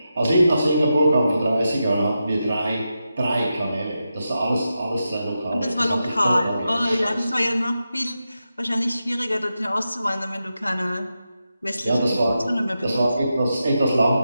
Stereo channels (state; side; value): inverted; both; correlation -0.89